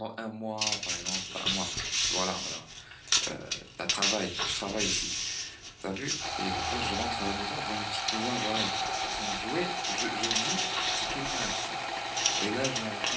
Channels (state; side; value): identical; both; correlation 1.00